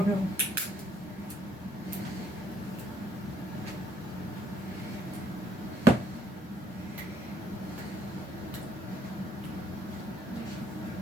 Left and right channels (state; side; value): normal; both; correlation 0.67